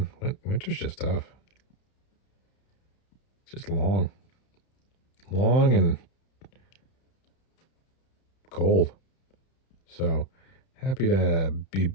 Winter's just tough. It's just long and cold. So happy to be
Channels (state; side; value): late; right; 31 ms